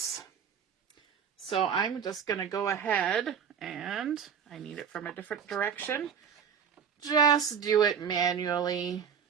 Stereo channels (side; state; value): left; quieter; 7.5 dB